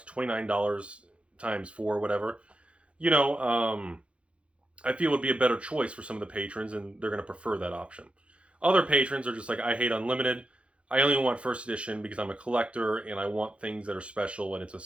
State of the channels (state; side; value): late; left; 0.060 ms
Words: times 4, whatever. I feel would be a better choice for some of the patrons, and they're going to prefer that option. Other patrons are just like, I hate Unlimited. I only want first edition because I'm a collector and I want things that are special and it's a